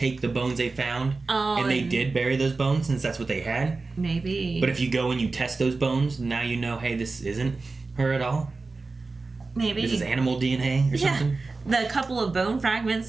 the bones they found and they did bury those bones since that's what they had? Maybe. But if you go and you test those bones, now you know, hey, this isn't her at all? Maybe. This is animal DNA or something? The couple of bone fragments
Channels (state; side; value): quieter; left; 3.8 dB